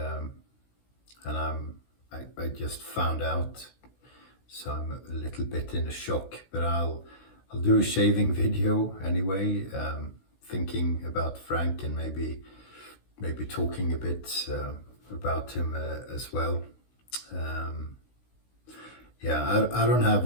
I just found out, so I'm a little bit in a shock. But I'll do a shaving video anyway, thinking about Frank and maybe talking a bit about him as well. Yeah, I don't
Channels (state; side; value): late; right; 16 ms